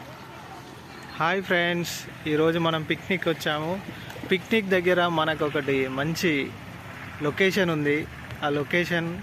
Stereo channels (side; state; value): both; identical; correlation 1.00